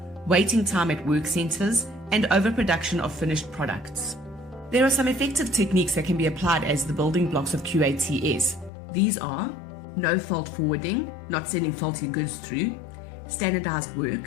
waiting time at work centers, and overproduction of finished products. There are some effective techniques that can be applied as the building blocks of QATS. These are no-fault forwarding, not sending faulty goods through, standardized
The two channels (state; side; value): drops out; right; at 8.7 s